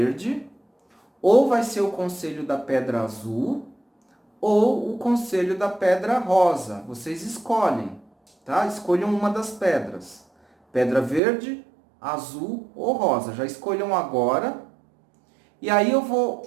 ou vai ser o conselho da pedra azul, ou o conselho da pedra rosa. Vocês escolhem, tá? Escolham uma das pedras. Pedra verde, azul ou rosa. Já escolham agora. E aí eu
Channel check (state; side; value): drops out; left; at 11.2 s